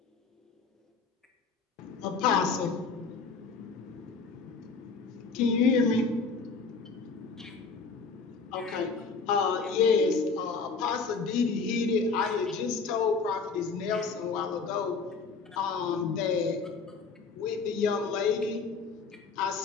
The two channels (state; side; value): quieter; right; 4.7 dB